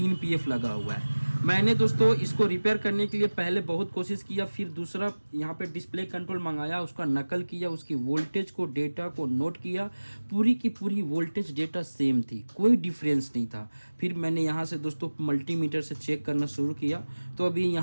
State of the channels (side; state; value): both; inverted; correlation -1.00